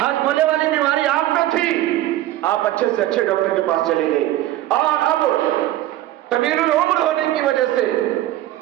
والی بیماری آپ کو تھی، آپ اچھے سے اچھے ڈاکٹر کے پاس چلے گئے، اور اب طویل العمر ہونے کی وجہ سے،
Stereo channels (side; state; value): left; quieter; 14.5 dB